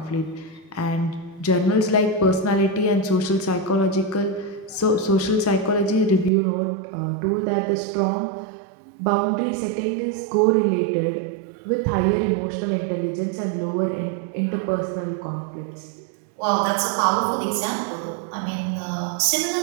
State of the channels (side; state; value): left; drops out; at 6.3 s